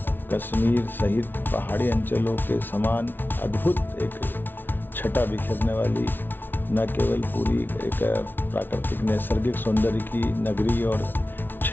कश्मीर सहित पहाड़ी अंचलों के समान अद्भुत एक छटा बिखेरने वाली न केवल पूरी एक प्राकृतिक नैसर्गिक सौंदर्य की नगरी और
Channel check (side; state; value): right; late; 0.097 ms